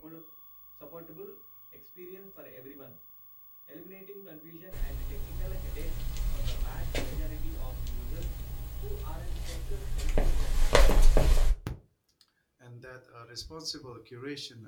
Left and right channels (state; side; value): identical; both; correlation 1.00